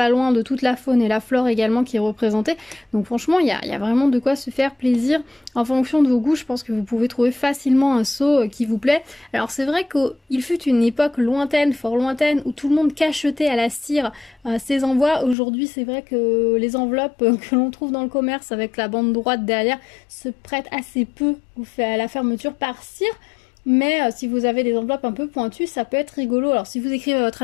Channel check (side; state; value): right; drops out; at 15.4 s